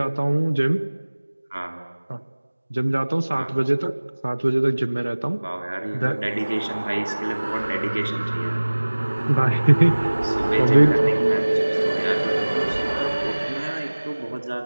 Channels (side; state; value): both; inverted; correlation -1.00